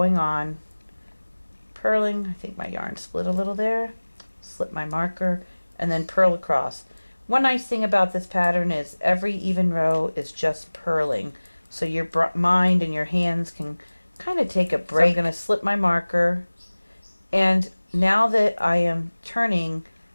on purling. I think my yarn split a little there. Slip my marker and then purl across. One nice thing about this pattern is every even row is just purling, so your mind and your hands can kind of take a break. So I'm going to slip my marker, and now that I am turning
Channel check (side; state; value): both; inverted; correlation -1.00